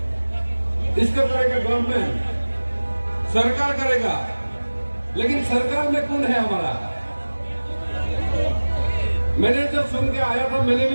इसको करेगा गवर्नमेंट, सरकार करेगा, लेकिन सरकार में कौन है हमारा? मैंने जब सुन के आया था, मैंने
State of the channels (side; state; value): both; inverted; correlation -1.00